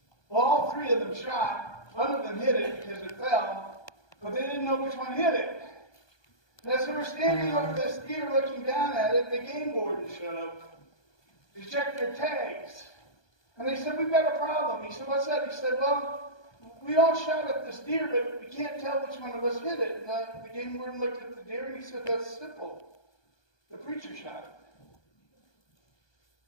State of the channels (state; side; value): late; right; 1.2 ms